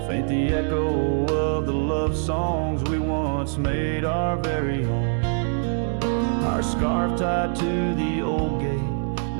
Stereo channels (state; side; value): silent; left; 60 dB below the other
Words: faint the echo of the love songs we once made our very own. Our scarf tied to the old gate,